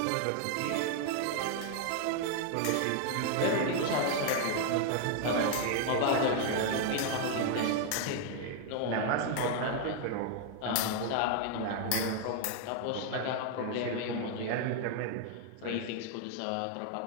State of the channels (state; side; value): different; both; correlation 0.00